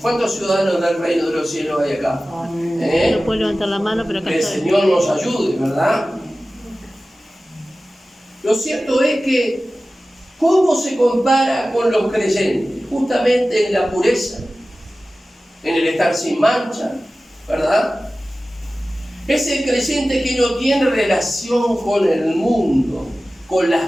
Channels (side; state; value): both; normal; correlation 0.96